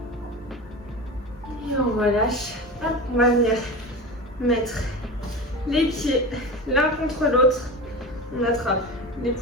Et on relâche. Hop, on va venir mettre les pieds l'un contre l'autre. On attrape les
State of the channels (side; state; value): both; normal; correlation 0.28